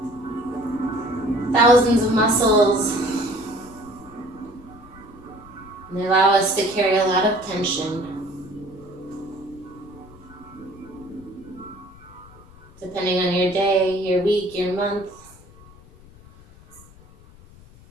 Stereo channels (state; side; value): noise; left; rumble, 23 dB below the sound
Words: thousands of muscles. And they allow us to carry a lot of tension. Depending on your day, your week, your month.